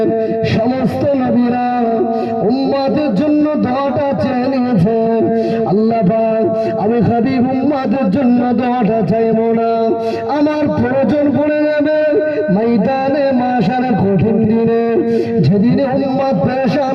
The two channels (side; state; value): both; identical; correlation 1.00